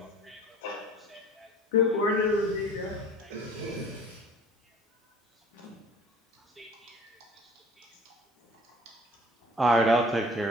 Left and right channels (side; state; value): both; normal; correlation 0.48